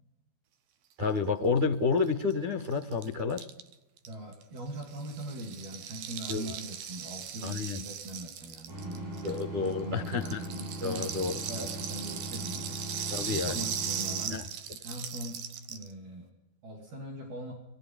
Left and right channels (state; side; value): late; left; 12 ms